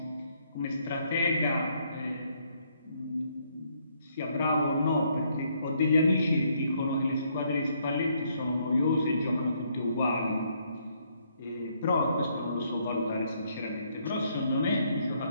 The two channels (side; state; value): both; inverted; correlation -0.71